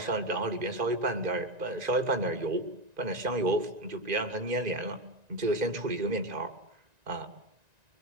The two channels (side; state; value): left; late; 1.9 ms